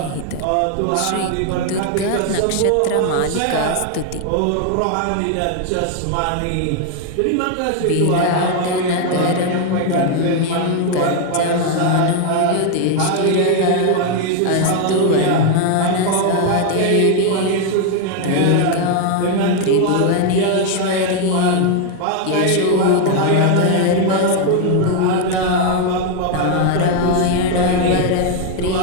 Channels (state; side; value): different; both; correlation 0.01